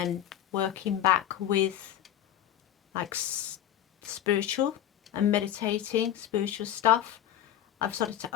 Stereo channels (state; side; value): quieter; right; 11.1 dB